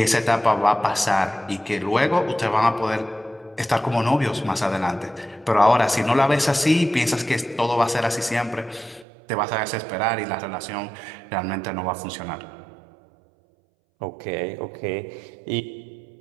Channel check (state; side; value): drops out; left; at 9.1 s